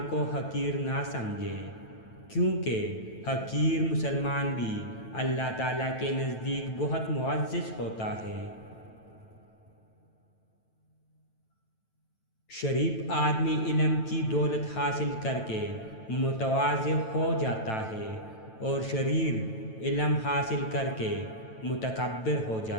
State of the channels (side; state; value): right; late; 9.1 ms